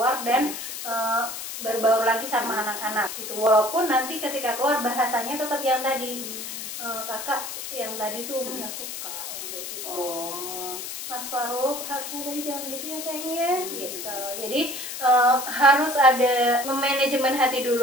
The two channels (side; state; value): left; noise; hiss, 7 dB below the sound